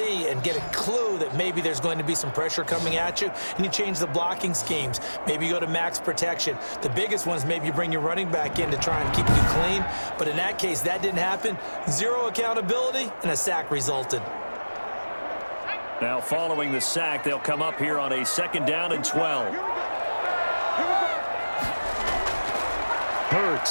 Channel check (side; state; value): both; inverted; correlation -1.00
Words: and get a clue that maybe there's going to be some pressure coming at you, and you change the blocking schemes. Maybe you go to max protection. The biggest ones, maybe you bring your running back in to try and keep you clean. But in that case, that didn't happen. 0 accountability, and a sack resulted. Now, following the sack, they'll come up here on a 2nd down and 12.